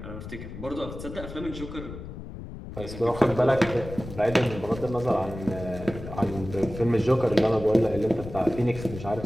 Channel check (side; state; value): left; noise; rumble, 11 dB below the sound